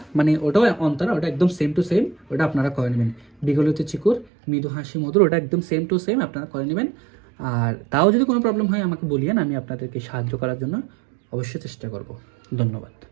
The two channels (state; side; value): drops out; left; at 4.2 s